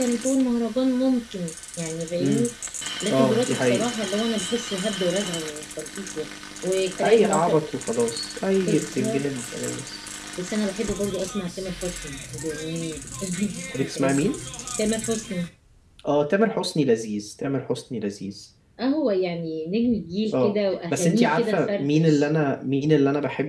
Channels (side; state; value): both; identical; correlation 1.00